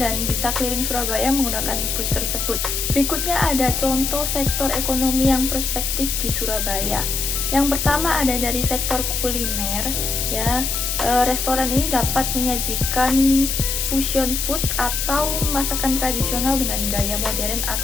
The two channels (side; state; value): left; noise; hiss, 1 dB below the sound